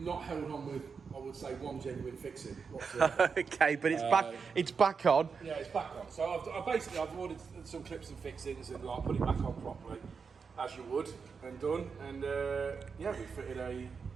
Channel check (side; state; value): left; quieter; 5.6 dB